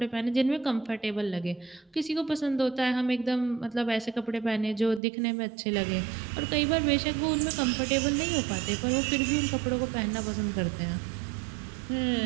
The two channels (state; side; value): drops out; left; at 5.0 s